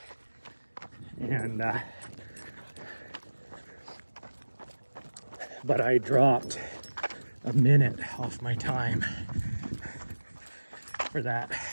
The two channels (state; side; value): inverted; both; correlation -1.00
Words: And but I dropped a minute off my time for that,